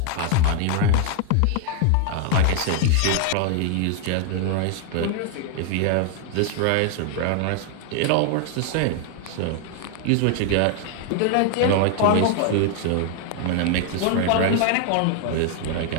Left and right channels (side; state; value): both; different; correlation 0.00